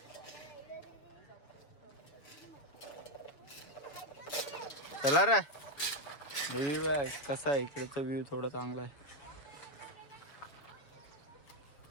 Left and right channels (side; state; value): right; late; 7.3 ms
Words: चला रे, व्ह्यू आहे कसा आहे इकडेचा व्ह्यू, थोडा चांगला आहे.